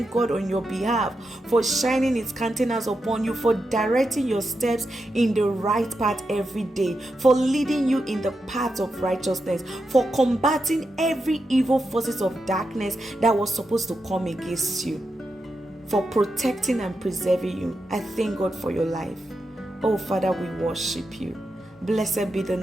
God on your behalf for shining His countenance upon you, for directing your steps in the right path every day, for leading you in the path of righteousness, for combating every evil forces of darkness that was supposed to come against you, for protecting and preserving you. I thank God for your life. Oh Father, we worship you. Blessed be the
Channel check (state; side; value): normal; both; correlation 0.87